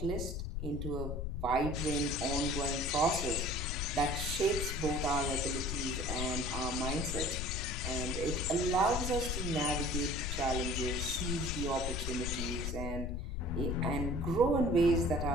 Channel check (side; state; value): left; noise; rumble, 3 dB below the sound